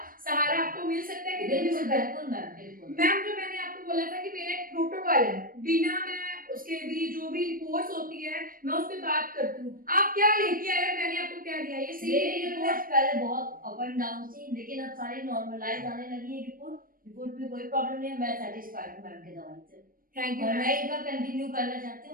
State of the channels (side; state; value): left; late; 0.41 ms